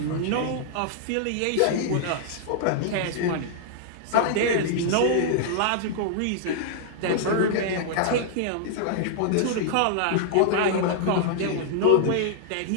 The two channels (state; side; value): different; both; correlation -0.01